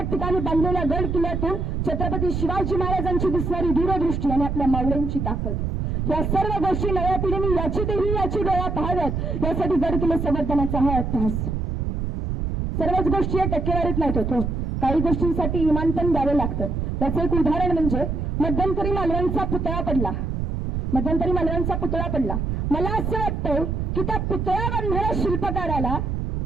ठिकाणी बांधलेल्या गड किल्ल्यातून छत्रपती शिवाजी महाराजांची दिसणारी दूरदृष्टी आणि आपल्या मावळ्यांची ताकद, या सर्व गोष्टी नव्या पिढीने याची देवी याची डोळा पाहाव्यात. यासाठी गड किल्ले संवर्धनाचा हा अभ्यास. सर्वच गोष्टी या टक्केवारीत नाहीत होतो. काही गोष्टींसाठी इमान पण द्यावे लागतं. त्याचं एक उदाहरण म्हणजे मध्यंतरी मालवणचा पुतळा पडला. मध्यंतरी मालवणचा पुतळा पडला. मला असं वाटतंय की त्या पुतळा बांधणाऱ्या शिल्पकाराला,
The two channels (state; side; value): noise; right; rumble, 1 dB below the sound